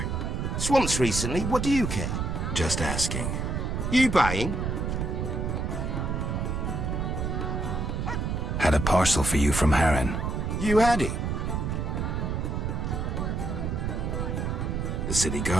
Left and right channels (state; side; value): noise; right; rumble, 1 dB below the sound